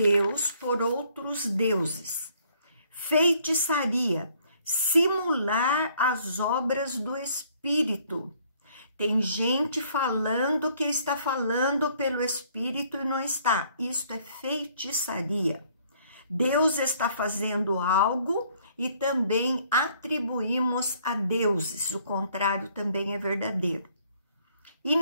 por outros deuses. Feitiçaria, simular as obras do Espírito. Tem gente falando que está falando pelo Espírito e não está. Isto é feitiçaria. Deus está fazendo algo e também atribuímos a deuses. O contrário também é verdadeiro.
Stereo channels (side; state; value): both; inverted; correlation -0.63